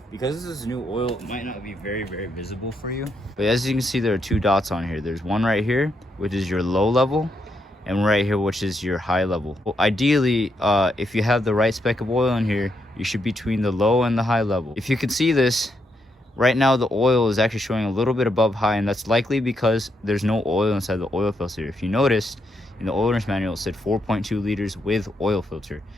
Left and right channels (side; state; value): both; normal; correlation 0.79